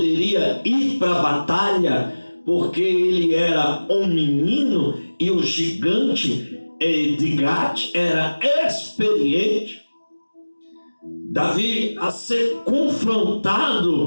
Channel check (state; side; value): inverted; both; correlation -1.00